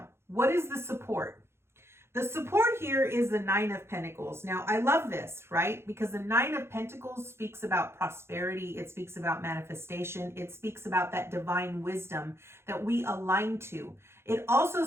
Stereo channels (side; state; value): left; late; 0.12 ms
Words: what is the support? The support here is the Nine of Pentacles. Now, I love this, right? Because the Nine of Pentacles speaks about prosperity. It speaks about manifestation. It speaks about that divine wisdom that we align to. It also